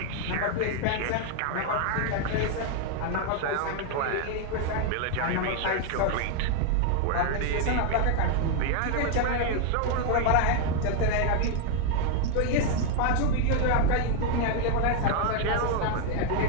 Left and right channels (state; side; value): different; both; correlation 0.00